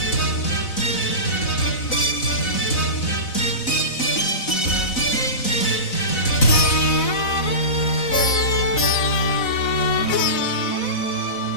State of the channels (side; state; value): right; late; 4.0 ms